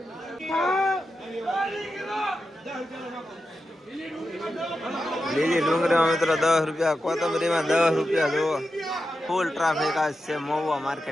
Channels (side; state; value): both; normal; correlation 0.90